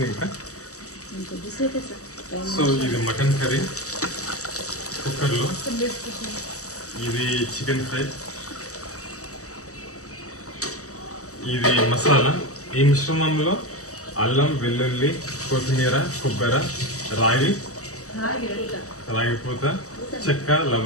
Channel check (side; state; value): right; late; 0.65 ms